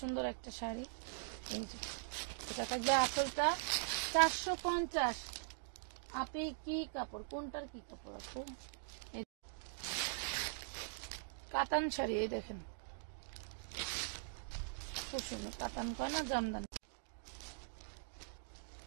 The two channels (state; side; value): silent; left; digital silence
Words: সুন্দর একটা শাড়ি। এটা থাকবে আঁচলটা 450। আপনি কি কাপড়, কোনটার কি কাপড় আছে? কাতান শাড়ি, এই দেখেন খুব সুন্দর কাতান, কয় না জামদান।